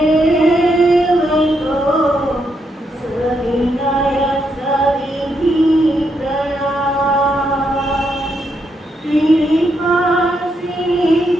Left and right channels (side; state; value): both; normal; correlation 0.79